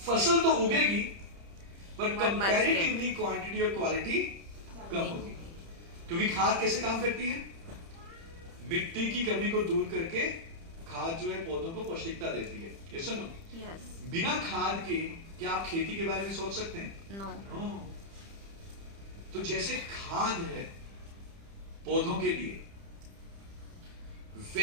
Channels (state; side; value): late; left; 30 ms